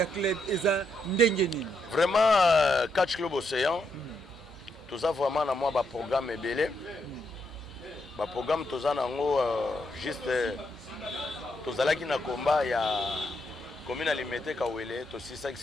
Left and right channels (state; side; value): normal; both; correlation 0.79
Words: club eza ndengeni. Vraiment catch club Océan. Tout ça vraiment na moi ba programme belé. Ba programme tout ça nango juste tozalaki na combat ya commune alimentaire Kawele to 6